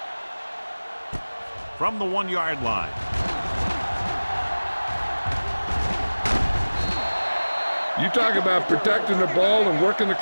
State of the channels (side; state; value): both; inverted; correlation -1.00